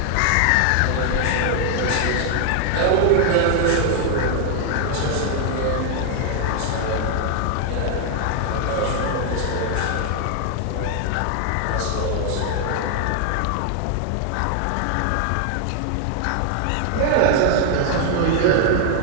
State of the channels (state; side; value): different; both; correlation 0.00